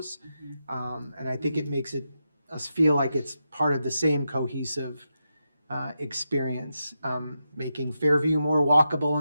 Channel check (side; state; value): both; inverted; correlation -0.87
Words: And I think it makes us feel like it's part of the same cohesive experience. Making Fairview more walkable